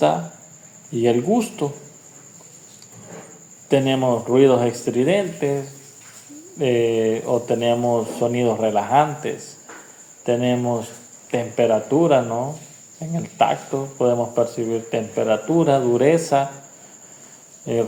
y el gusto. Tenemos ruidos estridentes o tenemos sonidos relajantes. Tenemos temperatura, ¿no? En el tacto podemos percibir temperatura, dureza,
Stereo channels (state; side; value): identical; both; correlation 1.00